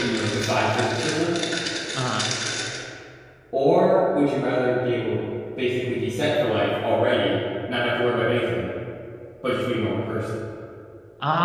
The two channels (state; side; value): identical; both; correlation 1.00